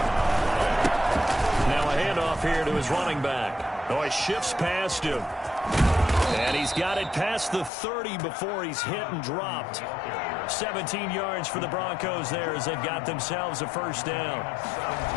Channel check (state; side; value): drops out; right; at 7.7 s